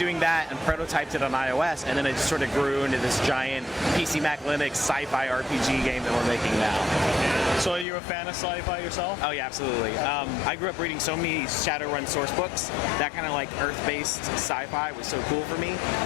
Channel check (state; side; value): drops out; right; at 7.9 s